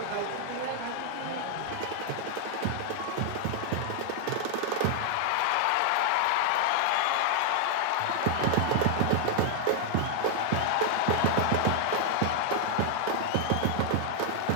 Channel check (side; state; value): both; different; correlation 0.00